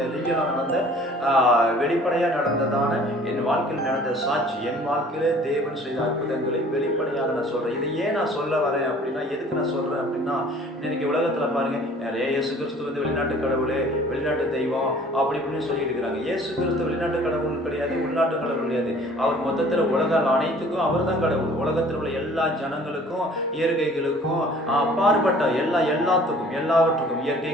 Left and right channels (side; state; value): both; normal; correlation 0.51